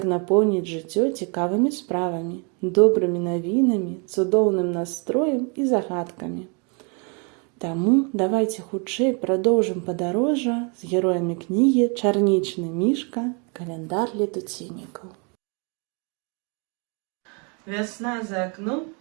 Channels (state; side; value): quieter; left; 35.1 dB